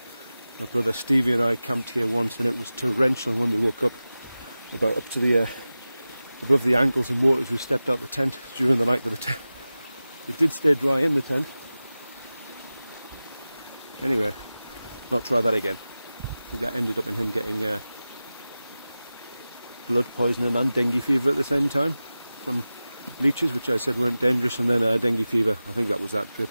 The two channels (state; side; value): inverted; both; correlation -0.96